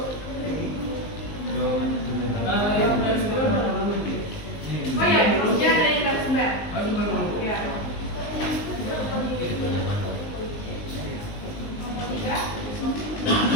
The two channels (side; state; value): right; late; 19 ms